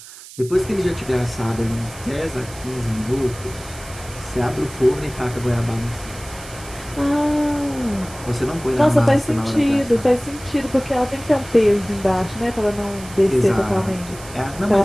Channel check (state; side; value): noise; right; hiss, 17 dB below the sound